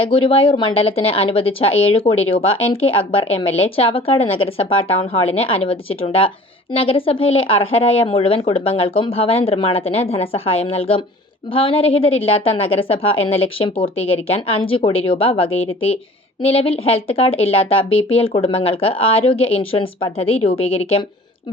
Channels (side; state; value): both; normal; correlation 0.46